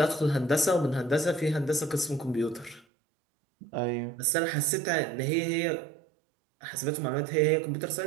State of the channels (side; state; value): left; drops out; at 2.9 s